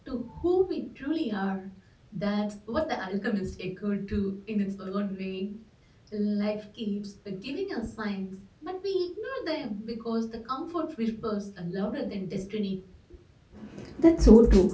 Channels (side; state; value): both; identical; correlation 1.00